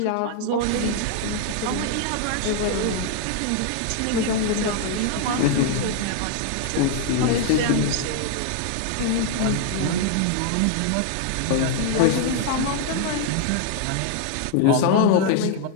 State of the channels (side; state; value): both; different; correlation 0.00